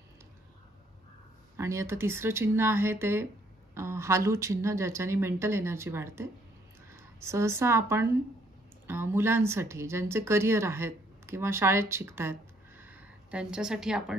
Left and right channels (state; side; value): normal; both; correlation 0.67